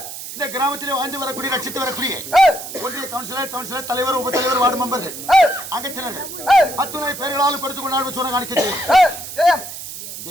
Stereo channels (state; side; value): noise; right; hiss, 10 dB below the sound